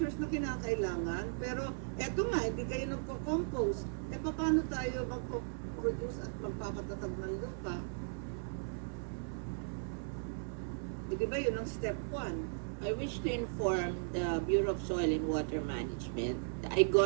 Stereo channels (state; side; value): silent; left; 53 dB below the other